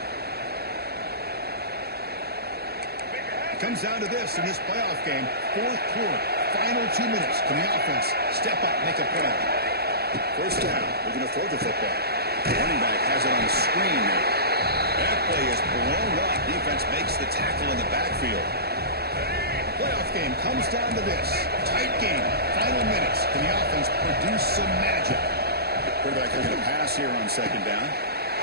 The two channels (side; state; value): left; late; 0.46 ms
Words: It comes down to this in this playoff game. Fourth quarter, final 2 minutes. Can the offense step up, make a play? First down, looking to throw the football. The running back has it on the screen now. That play is blown up. Defense makes the tackle in the backfield. Playoff game comes down to this. Tight game. Final minutes. Can the offense produce some magic? Quarterback looking to pass here on second down.